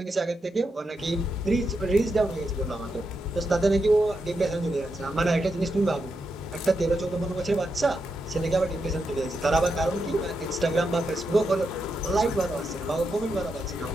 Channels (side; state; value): both; normal; correlation 0.85